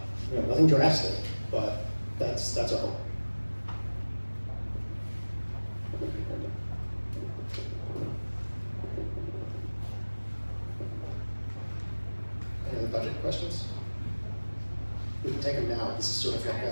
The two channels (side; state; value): both; inverted; correlation -1.00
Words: nothing drastic, but that's our hope. Any other budget questions? We can take them now. This is sort of like